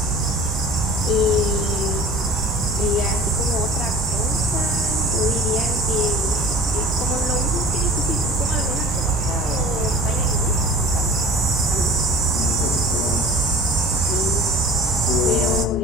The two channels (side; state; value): both; normal; correlation 0.43